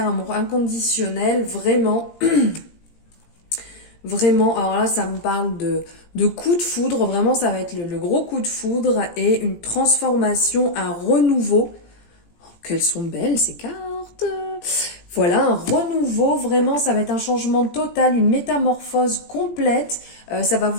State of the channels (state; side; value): late; right; 17 ms